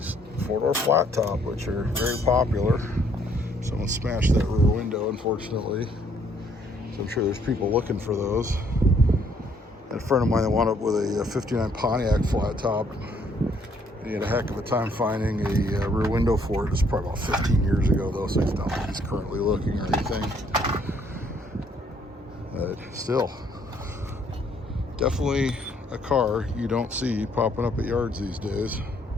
four-door flat top, which are very popular. Someone smashed that rear window, unfortunately. So I'm sure there's people looking for those. And a friend of mine that wound up with a 59 Pontiac flat top. He had a heck of a time finding a rear window for it. It's probably about 15 years ago, though, so it's not like he's currently looking or anything. But still, definitely a car you don't see popping up at yards these days.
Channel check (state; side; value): normal; both; correlation 0.66